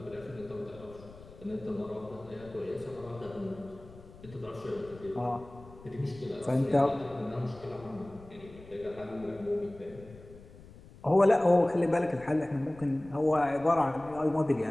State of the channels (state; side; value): noise; left; rumble, 20 dB below the sound